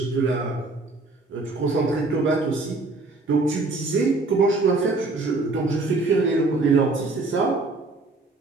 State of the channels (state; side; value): quieter; left; 3.3 dB